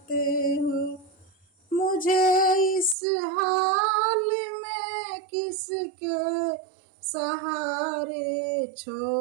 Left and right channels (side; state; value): left; drops out; at 3.0 s